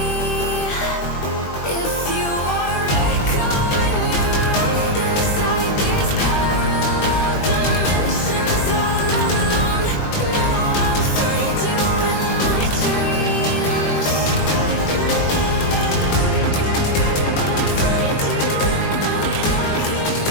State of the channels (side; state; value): right; late; 20 ms